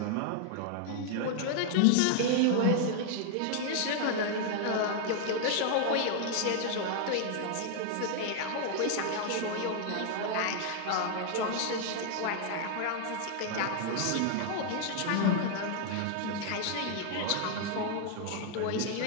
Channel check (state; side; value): different; both; correlation 0.00